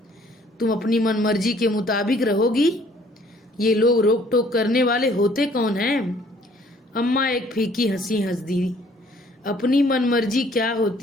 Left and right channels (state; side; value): normal; both; correlation 0.59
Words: अपनी मनमर्जी के मुताबिक रहोगी। ये लोग रोक टोक करने वाले होते कौन हैं? अम्मा एक फीकी हंसी हंस दी। अपनी मनमर्जी क्या